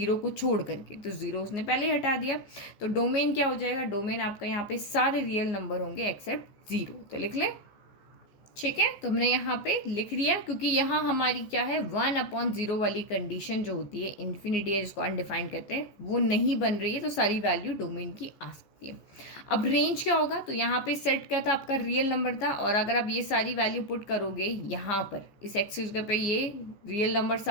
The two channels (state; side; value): late; right; 14 ms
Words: को छोड़ करके, तो 0 उसने पहले ही हटा दिया। तो डोमेन क्या हो जाएगा, डोमेन आपका यहाँ पे सारे रियल नंबर होंगे एक्सेप्ट 0, तो लिख लें। ठीक है, तो हमने यहाँ पे लिख लिया, क्योंकि यहाँ हमारी क्या है, 1/0 वाली कंडीशन जो होती है, इन्फिनिटी है जिसको अनडिफाइंड कहते हैं, वो नहीं बन रही है, तो सारी वैल्यू डोमेन की आ सकती है। अब रेंज क्या होगा, तो यहाँ पे सेट क्या था, आपका रियल नंबर था, और अगर आप ये सारी वैल्यू पुट करोगे यहाँ पर इस एक्सिस पे, ये रियल नंबर